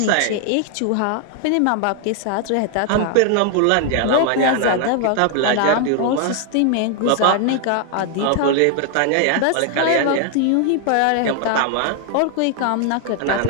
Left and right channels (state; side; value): different; both; correlation 0.00